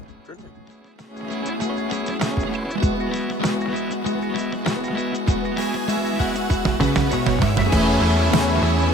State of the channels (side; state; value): both; normal; correlation 0.62